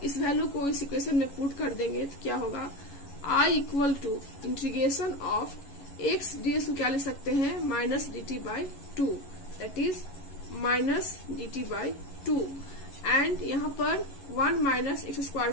इस value को इस इक्वेशन में पुट कर देंगे तो क्या होगा I equal to integration of x dx को क्या लिख सकते हैं minus dt by 2. That is minus dt by 2. And यहाँ पर 1 माइनस एक्स स्क्वायर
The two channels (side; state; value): right; late; 11 ms